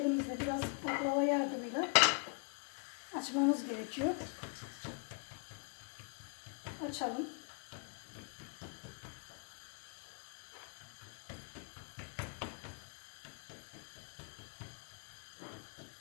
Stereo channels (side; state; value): right; quieter; 39.1 dB